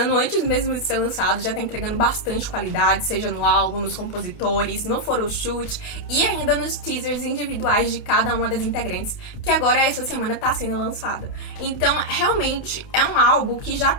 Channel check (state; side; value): late; right; 28 ms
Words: antes mesmo de ser lançado, já tá entregando bastante qualidade, seja no álbum, nos compositores, no photoshoot e ainda nos teasers individuais de cada uma das integrantes, que agora essa semana tá sendo lançada. Então, realmente, é um álbum que já